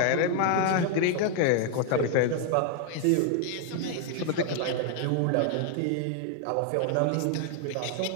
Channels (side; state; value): both; different; correlation 0.00